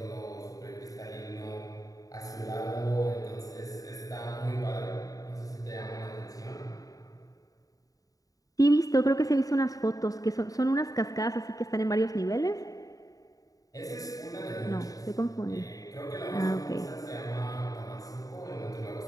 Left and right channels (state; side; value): late; right; 0.17 ms